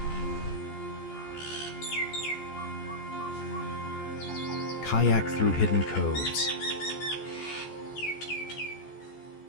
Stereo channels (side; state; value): right; late; 14 ms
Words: Kayak through hidden coves.